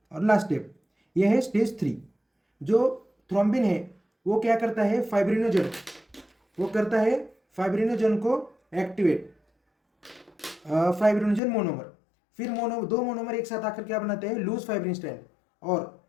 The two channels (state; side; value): drops out; right; at 11.4 s